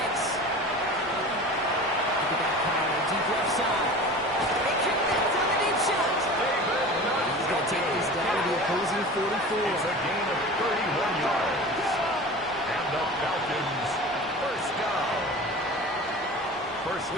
Look at that power, deep left side. They connect on the deep shot. He's going to take this down to the opposing 44. It's a gain of 31 yards. And the Falcons first down. First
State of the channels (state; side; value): normal; both; correlation 0.36